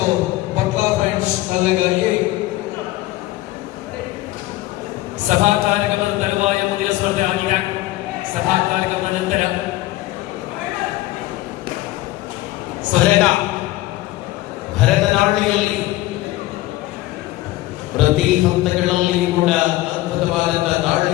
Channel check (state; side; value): quieter; right; 17.4 dB